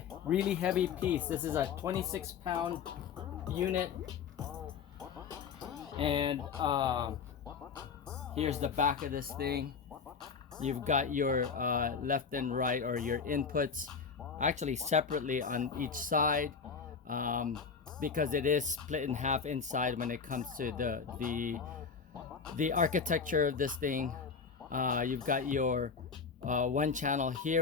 really heavy piece. This is a 26-pound unit, and here's the back of this thing. You've got your left and right, or your inputs, actually separately on each side, because it is split in half inside when it comes to the architecture of this thing. You've got your one channel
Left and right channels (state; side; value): quieter; right; 5.8 dB